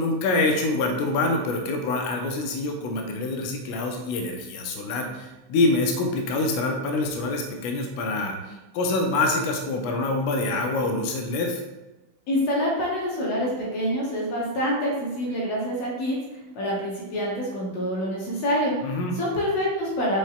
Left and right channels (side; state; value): right; late; 16 ms